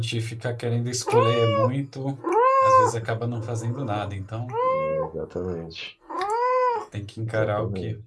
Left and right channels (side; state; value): both; identical; correlation 1.00